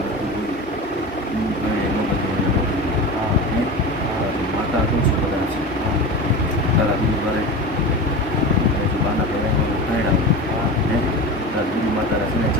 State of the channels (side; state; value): both; normal; correlation 0.28